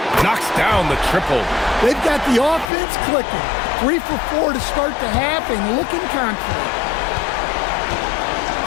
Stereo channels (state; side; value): drops out; right; at 2.7 s